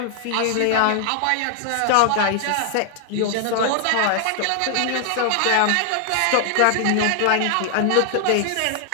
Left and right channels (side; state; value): both; different; correlation -0.01